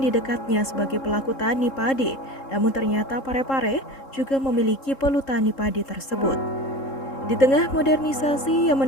di dekatnya sebagai pelaku tani padi. Namun ternyata Pare-pare juga memiliki pelutani padi tersebut. Di tengah modernisasi yang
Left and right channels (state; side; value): late; right; 3.7 ms